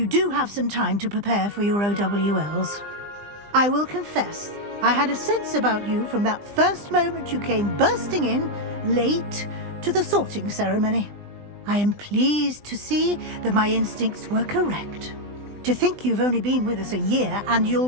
do have some time to prepare for your OWLs. I will confess, I had a sense about you from that first moment you came bursting in, late, to the sorting ceremony. I am pleased to see that my instincts were correct. To think you've only been with us a year and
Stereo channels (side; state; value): left; late; 20 ms